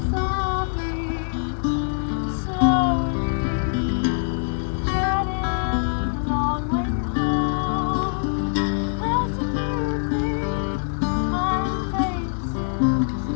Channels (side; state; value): right; silent; 59 dB below the other